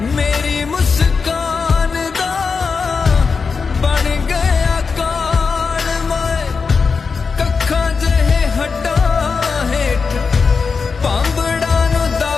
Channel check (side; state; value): right; quieter; 5.1 dB